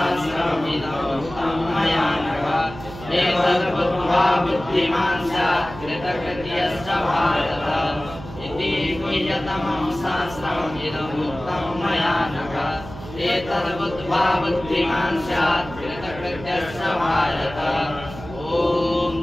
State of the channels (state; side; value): noise; right; hum, 14 dB below the sound